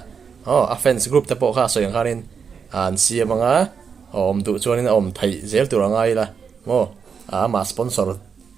offense group te po kha soyang khanin an siamanga om tu chuanin om thai zel turangai la mo ama sponsor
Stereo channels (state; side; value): quieter; left; 6.3 dB